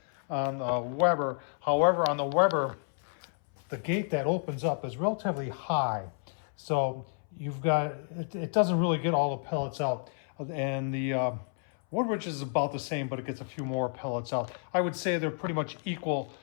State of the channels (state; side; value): silent; right; 58 dB below the other